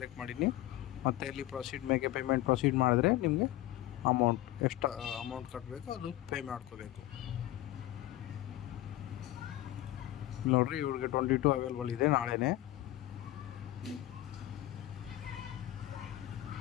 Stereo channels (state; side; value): quieter; right; 15.0 dB